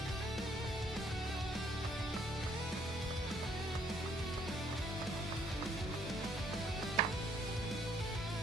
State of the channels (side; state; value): both; normal; correlation 0.66